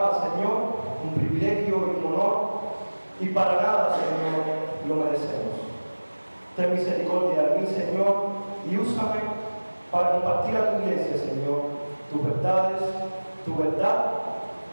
Señor. Un privilegio y un honor. Y para nada, Señor, lo merecemos. Ten misericordia de mí, Señor, y úsame para compartir a tu iglesia, Señor, tus verdades, tu verdad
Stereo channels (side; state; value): both; inverted; correlation -1.00